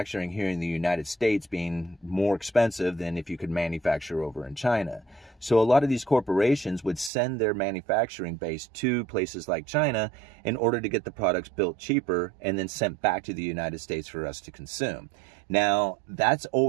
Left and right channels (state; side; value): drops out; left; at 7.1 s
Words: here in the United States being more expensive than if you could manufacture over in China. So a lot of these corporations would send their manufacturing base to places like China in order to get the products built cheaper and then sent back to the United States for us to consume. Now, that's